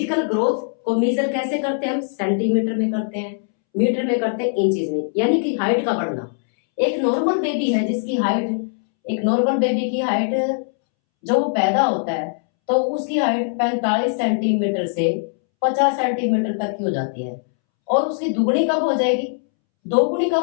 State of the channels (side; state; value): right; silent; 65 dB below the other